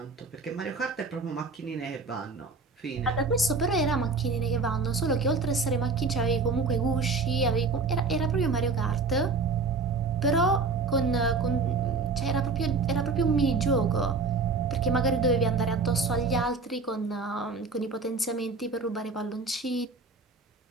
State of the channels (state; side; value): quieter; left; 4.1 dB